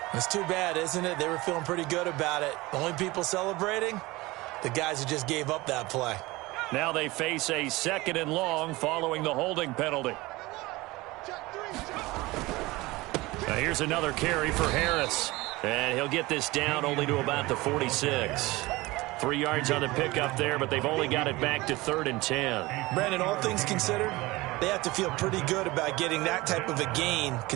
It's too bad, isn't it? They were feeling pretty good about it. The only people celebrating, the guys who just gave up that play. Now they face a 2nd and long following the holding penalty. Now here's another carry for Harris. And he'll get this down only to about the 46. 3 yards on the pickup there, but they've only got it back to 3rd and 10. Brandon, all things considered, they have to feel pretty good about getting that type of a gain,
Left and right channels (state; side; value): quieter; left; 21.0 dB